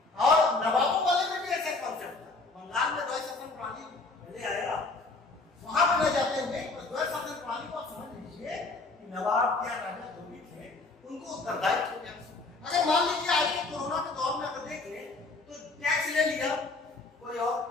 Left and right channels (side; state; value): right; quieter; 3.5 dB